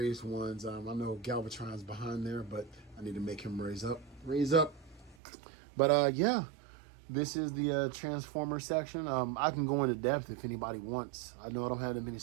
ones. I know Galvatron's behind there, but I need to make him raise up. But yeah, this is the Transformer section. I can go into depth if anybody wants. I know I don't have that many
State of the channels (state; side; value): drops out; left; at 5.2 s